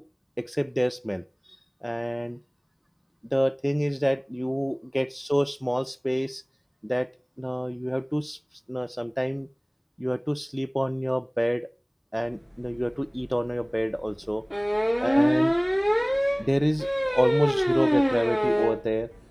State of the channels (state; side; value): identical; both; correlation 1.00